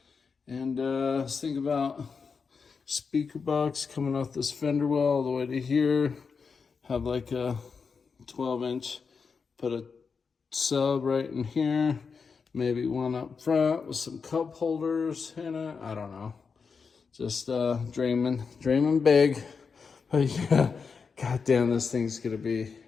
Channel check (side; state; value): right; quieter; 5.4 dB